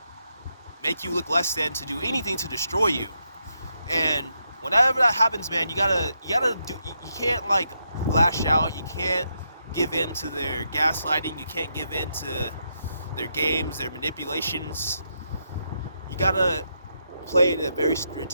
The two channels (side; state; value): both; inverted; correlation -0.81